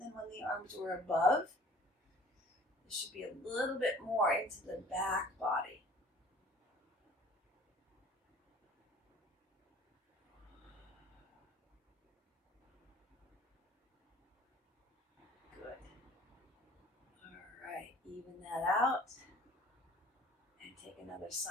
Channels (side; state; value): both; normal; correlation 0.50